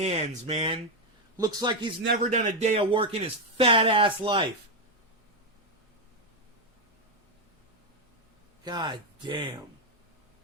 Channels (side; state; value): both; normal; correlation 0.05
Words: man. Looks like he's never done a day of work in his fat ass life. God damn.